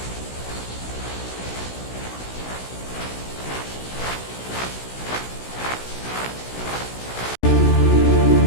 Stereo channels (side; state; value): right; late; 16 ms